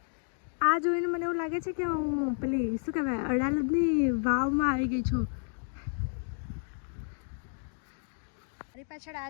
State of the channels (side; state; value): right; silent; 57 dB below the other